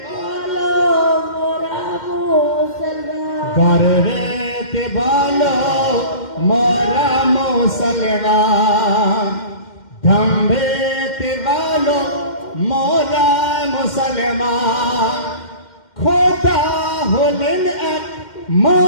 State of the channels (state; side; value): late; right; 2.1 ms